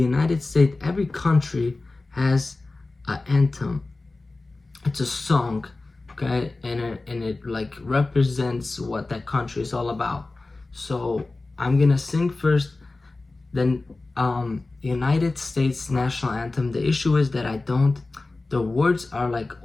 States, every country has an anthem. It's a song, okay, and it like represents what that country is all about. So I'm gonna sing first, then United States national anthem. The issue is that the words are like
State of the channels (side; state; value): right; quieter; 3.3 dB